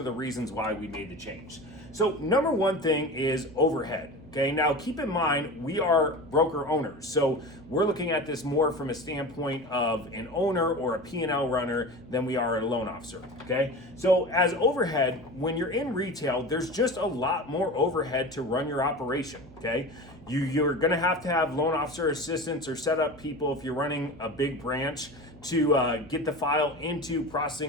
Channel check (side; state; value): right; noise; hum, 21 dB below the sound